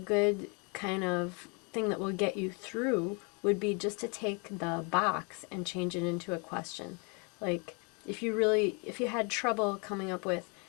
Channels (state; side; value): quieter; right; 33.6 dB